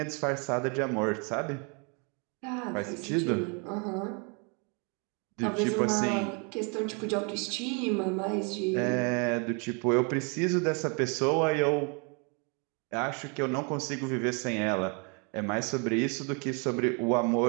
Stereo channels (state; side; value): quieter; left; 34.7 dB